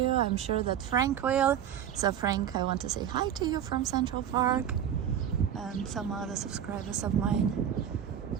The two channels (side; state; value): left; quieter; 9.5 dB